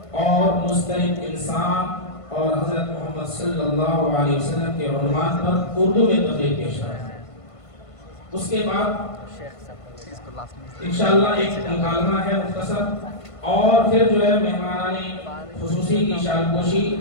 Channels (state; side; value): late; right; 1.5 ms